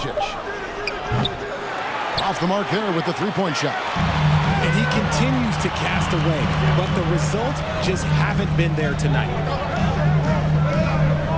Off the mark there with the three-point shot. And he continues to cast away, but the results just haven't been there tonight.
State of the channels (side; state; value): both; identical; correlation 1.00